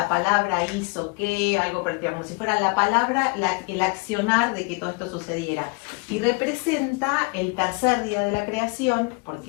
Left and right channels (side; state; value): right; quieter; 31.0 dB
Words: palabra hizo que, algo parecido, como si fuera la palabra, el accionar de que todo esto sucediera. Y representa el tercer día de la creación,